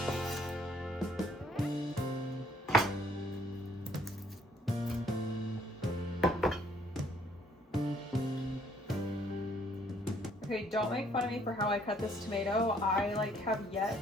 Okay, don't make fun of me for how I cut this tomato. I have yet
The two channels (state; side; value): normal; both; correlation 0.64